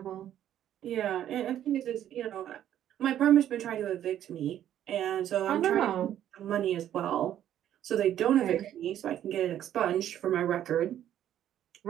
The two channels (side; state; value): left; quieter; 11.1 dB